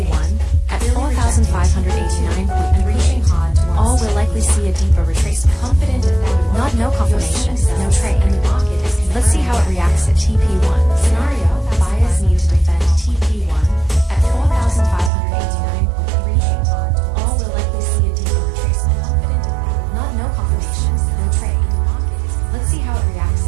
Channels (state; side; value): drops out; left; at 15.1 s